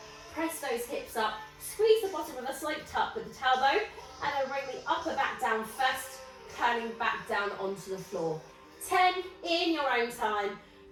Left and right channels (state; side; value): identical; both; correlation 1.00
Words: press those hips up, squeeze the bottom with a slight tuck with the tailbone, and then bring the upper back down first, turning back down onto the floor. 10 in your own time.